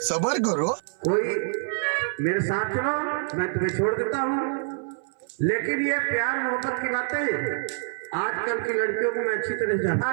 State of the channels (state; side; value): silent; left; 57 dB below the other